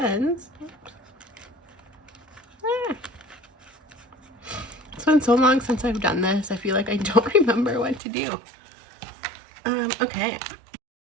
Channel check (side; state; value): left; drops out; at 8.0 s